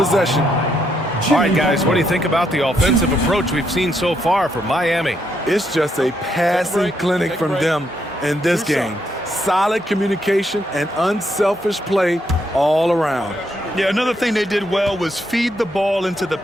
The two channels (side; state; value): both; normal; correlation 0.76